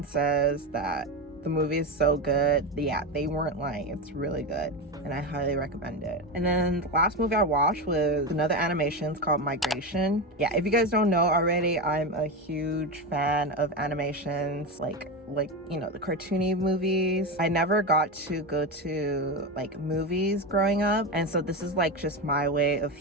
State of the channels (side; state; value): both; normal; correlation 0.17